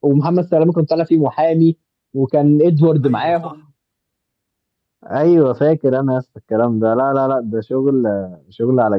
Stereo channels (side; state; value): both; identical; correlation 1.00